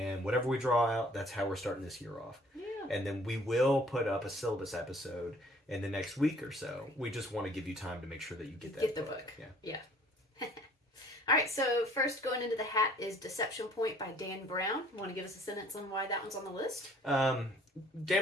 whatever we draw out, that's how we're starting this year off. Yeah. And then we will put up a syllabus episode in the next week or so. We just want to give you time to make sure that you get that Get the book. Yeah. All right, so first going into the hat is Deception Point by Dan Brown. Want to give us a sentence on why that one's on the list?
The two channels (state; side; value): normal; both; correlation 0.56